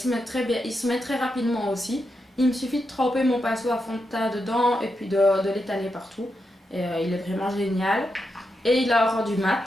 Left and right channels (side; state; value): both; normal; correlation 0.85